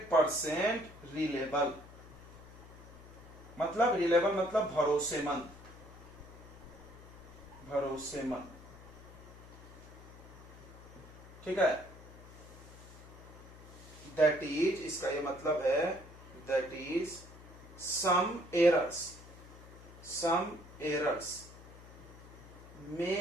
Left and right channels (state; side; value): noise; left; hum, 18 dB below the sound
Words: reliable. मतलब रिलेबल मतलब भरोसेमंद, ठीक है। दैट इज, इसका ये मतलब है, दैट इज सम एरर्स